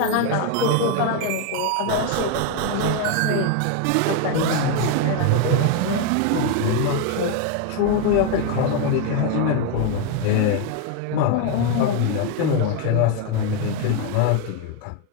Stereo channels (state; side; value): different; both; correlation 0.01